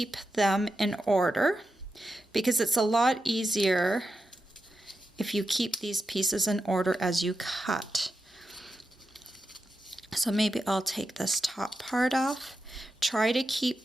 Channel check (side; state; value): both; normal; correlation 0.88